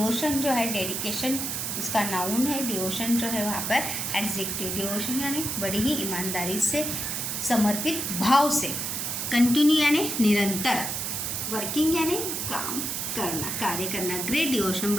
जो है डेडिकेशन उसका नाउन है, devotion जो है वहाँ पर एडजेक्टिव. devotion यानी बड़ी ही ईमानदारी से समर्पित भाव से. कंटिन्यू यानी निरंतर. वर्किंग यानी काम करना, कार्य करना. ग्रेट डिवोशन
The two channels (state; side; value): noise; right; hiss, 2 dB below the sound